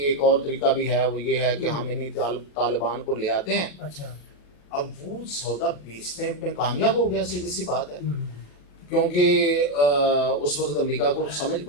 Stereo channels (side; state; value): right; late; 28 ms